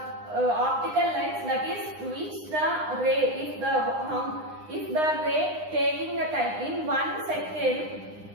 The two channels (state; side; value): late; left; 9.8 ms